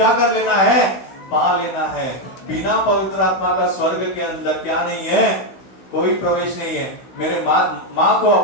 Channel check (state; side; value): late; right; 16 ms